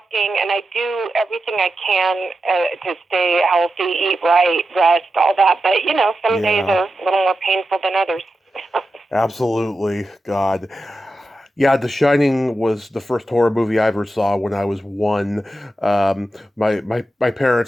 and I do everything I can to stay healthy, eat right, rest, all that. But, some days are a little more painful than others. Absolutely. God. Yeah, The Shining was the first horror movie I ever saw when I was 1. My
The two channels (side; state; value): both; normal; correlation 0.90